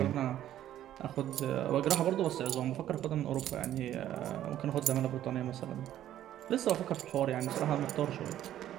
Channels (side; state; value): left; quieter; 12.0 dB